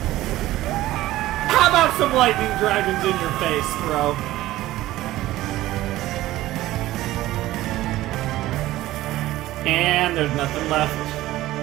How about some lightning dragons in your face, bro? And there's nothing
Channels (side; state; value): left; quieter; 16.0 dB